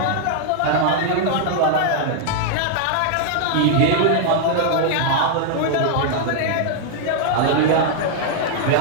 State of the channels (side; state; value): both; different; correlation -0.01